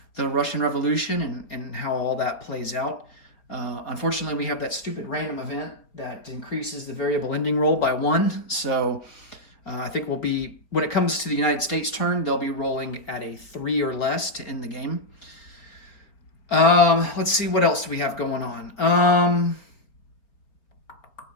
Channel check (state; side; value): late; right; 4.1 ms